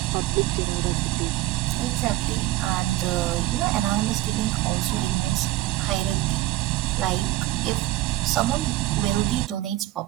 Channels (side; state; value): left; quieter; 16.7 dB